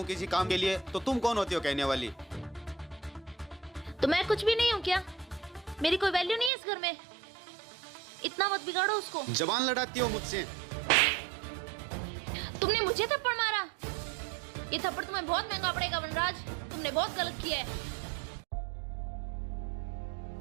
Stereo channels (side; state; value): left; drops out; at 6.5 s